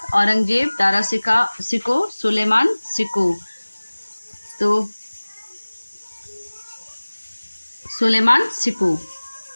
औरंगजेब, दारा सिको, सुलेमान सिको। तो सुलेमान सिको।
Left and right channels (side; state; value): both; inverted; correlation -1.00